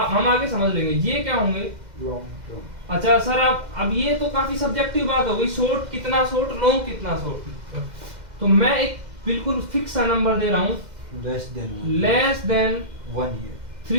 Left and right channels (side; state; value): left; late; 2.0 ms